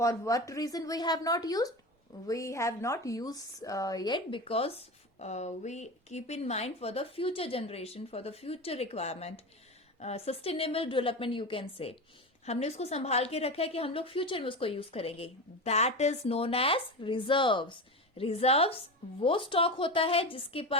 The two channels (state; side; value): normal; both; correlation 0.23